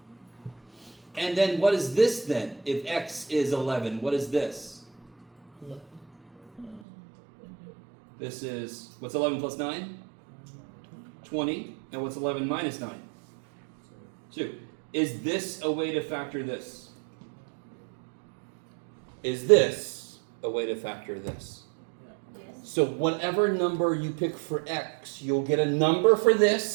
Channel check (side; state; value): left; drops out; at 6.8 s